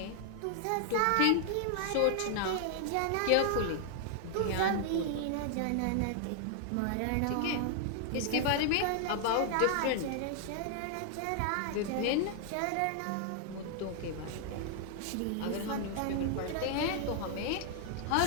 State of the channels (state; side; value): different; both; correlation 0.00